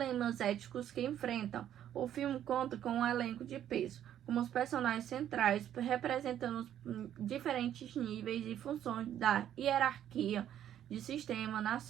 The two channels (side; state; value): left; quieter; 10.8 dB